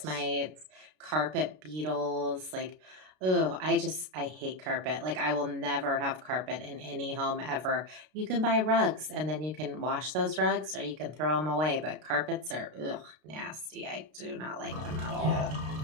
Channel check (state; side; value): late; left; 32 ms